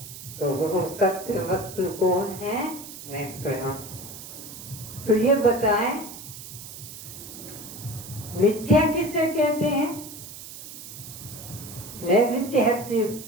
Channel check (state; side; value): noise; right; hiss, 13 dB below the sound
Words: तो वो सत्य वस्तु कौन है? मैं स्वयं। तो ये बताएं, मिथ्या किसे कहते हैं? मैं विद्यार्थी